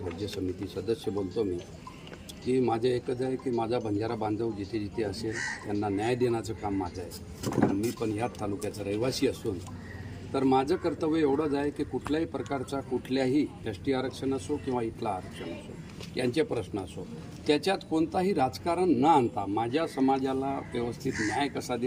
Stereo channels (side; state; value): both; identical; correlation 1.00